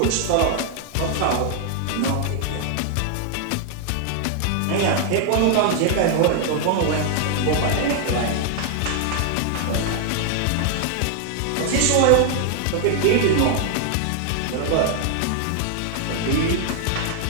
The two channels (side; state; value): both; different; correlation 0.00